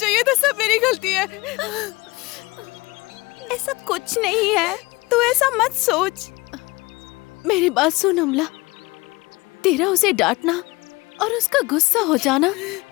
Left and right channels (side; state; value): right; quieter; 23.3 dB